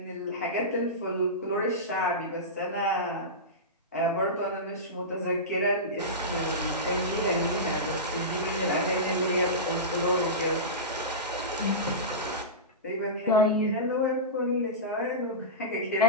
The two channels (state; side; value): normal; both; correlation -0.18